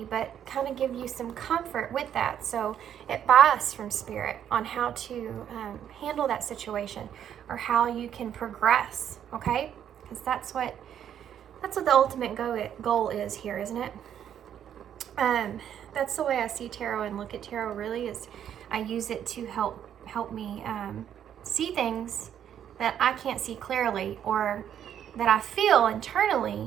but kind of give you some comfort with that. So advice from Spirit on how to handle that situation or how you can progress, okay? Because that's what the ultimate goal is here, isn't it? That's the way I see tarot and look at tarot. Really, is I use it to help me see things that I can't see clearly, or that I feel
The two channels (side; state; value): left; quieter; 9.6 dB